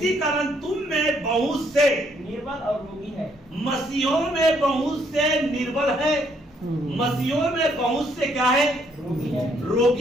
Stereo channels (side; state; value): both; normal; correlation 0.69